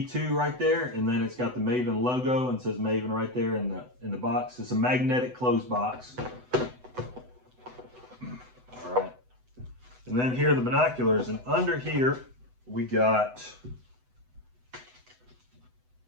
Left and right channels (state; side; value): late; left; 8.0 ms